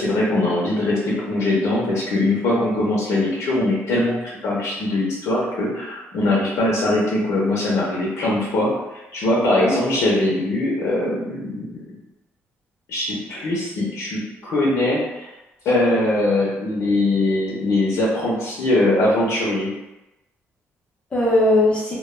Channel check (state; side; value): normal; both; correlation 0.66